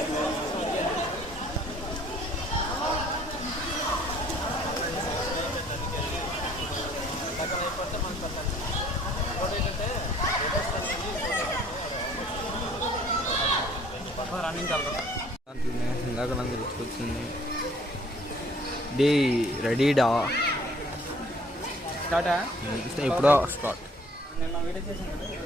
రన్నింగ్ వెళ్తాం. ఇందాక నాకు గుర్తుకొచ్చింది. డే రెడీడా స్టార్టా? ఎప్పుడో స్టార్ట్. నేను వీడియో చేసాను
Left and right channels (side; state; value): both; normal; correlation 0.57